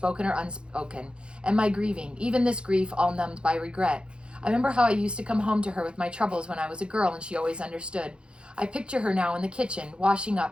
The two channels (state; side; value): late; left; 0.055 ms